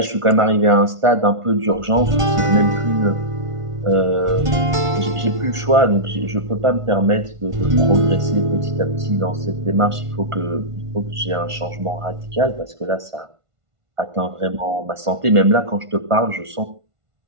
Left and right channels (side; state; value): left; late; 1.5 ms